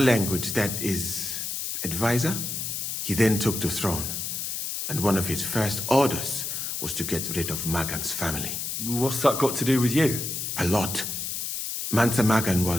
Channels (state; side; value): noise; left; hiss, 3 dB below the sound